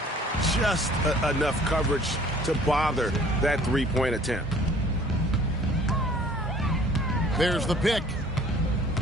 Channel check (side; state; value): both; normal; correlation 0.52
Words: Just enough coverage to bother that 3-point attempt. There's the pick.